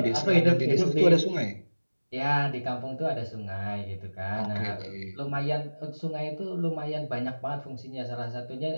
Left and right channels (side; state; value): both; inverted; correlation -1.00